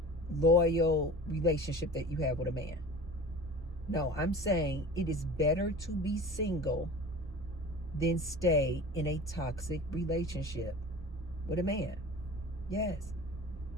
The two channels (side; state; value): both; normal; correlation 0.38